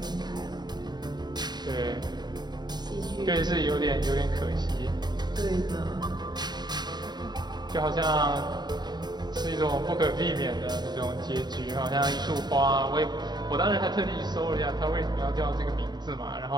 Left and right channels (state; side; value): late; left; 0.20 ms